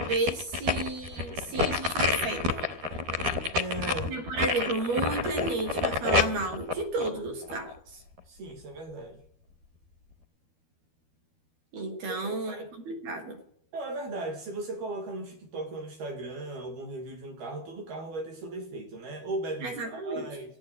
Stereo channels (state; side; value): late; left; 12 ms